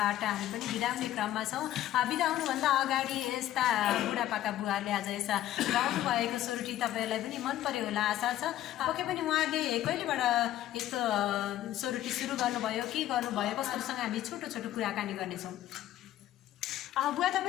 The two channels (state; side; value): quieter; right; 13.2 dB